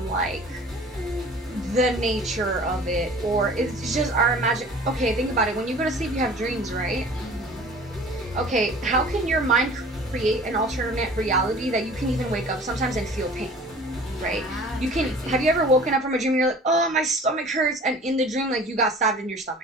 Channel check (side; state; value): both; normal; correlation 0.46